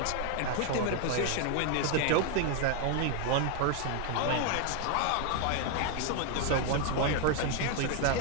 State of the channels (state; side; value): different; both; correlation 0.01